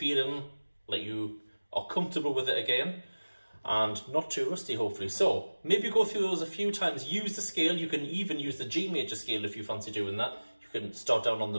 like you are comfortable with it again, and not too rusty hopefully. So maybe go through those a few times, use the scale, you can even use the G major scale if you fancy doing that. You can start down on the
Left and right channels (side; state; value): both; inverted; correlation -1.00